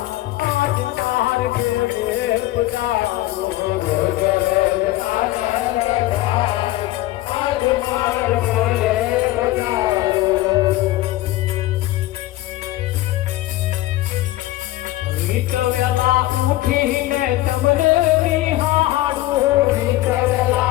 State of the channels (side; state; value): right; quieter; 16.6 dB